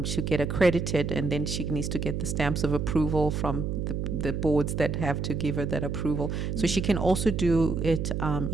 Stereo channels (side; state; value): right; noise; hum, 2 dB below the sound